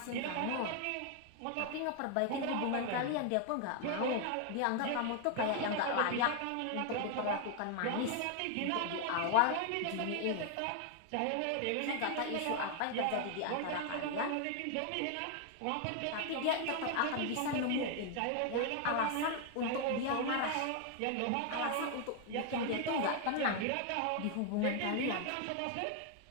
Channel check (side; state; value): both; different; correlation 0.00